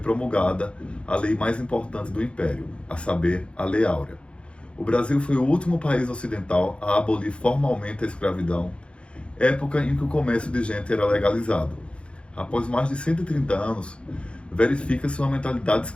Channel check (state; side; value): late; right; 0.058 ms